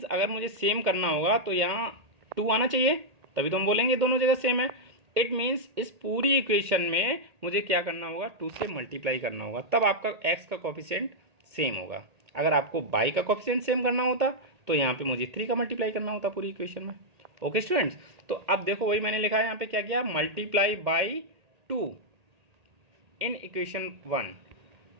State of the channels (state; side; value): late; left; 1.8 ms